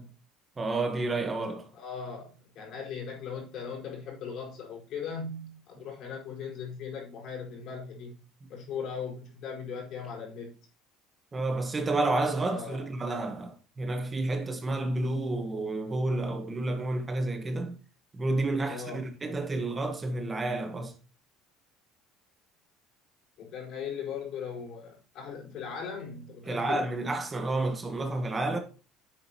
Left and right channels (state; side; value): normal; both; correlation 0.79